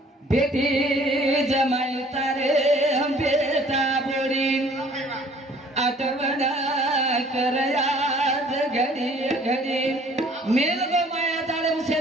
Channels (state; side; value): normal; both; correlation 0.55